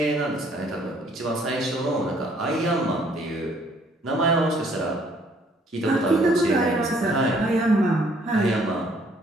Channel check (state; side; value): normal; both; correlation 0.63